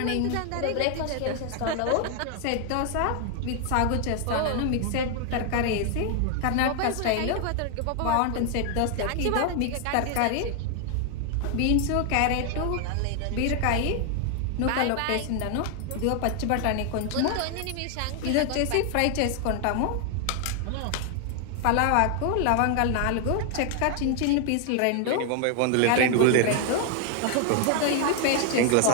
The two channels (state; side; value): different; both; correlation 0.00